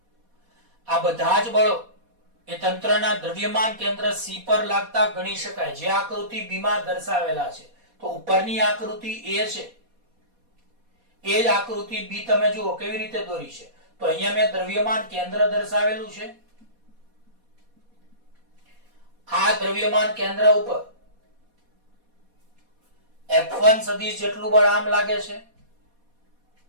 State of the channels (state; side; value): late; left; 4.2 ms